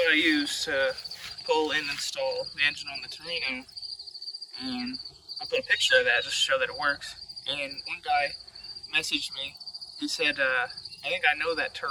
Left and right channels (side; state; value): both; identical; correlation 1.00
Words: I use to pull and install the engine on the Torino, and I put a picture of that just to show that it works. And one guy messaged me. He said, I think I know that